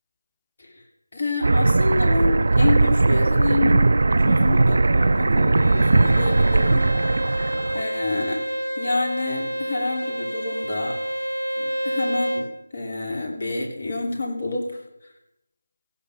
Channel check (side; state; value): both; inverted; correlation -0.96